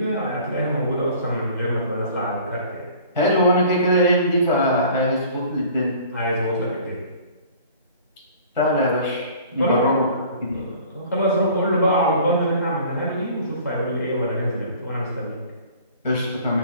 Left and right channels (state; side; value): inverted; both; correlation -0.49